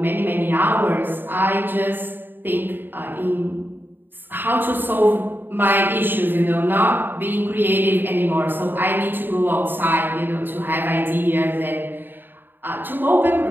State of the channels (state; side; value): late; left; 0.094 ms